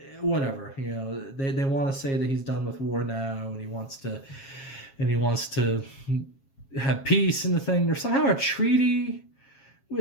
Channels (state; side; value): late; right; 7.4 ms